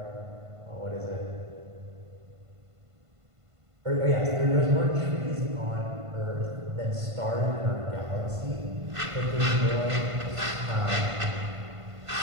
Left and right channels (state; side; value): late; left; 1.5 ms